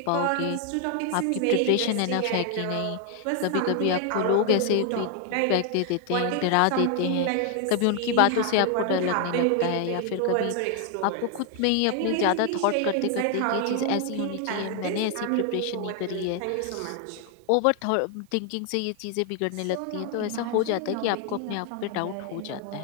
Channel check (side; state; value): both; different; correlation 0.00